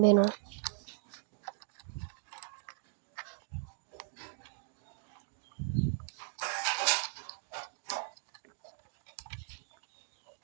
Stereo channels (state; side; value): silent; left; digital silence